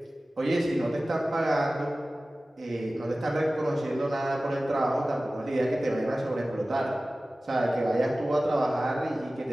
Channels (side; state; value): both; normal; correlation 0.97